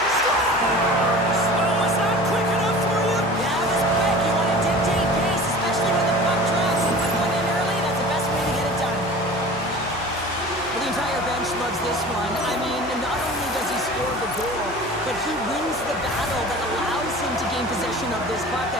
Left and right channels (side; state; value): left; noise; hum, 20 dB below the sound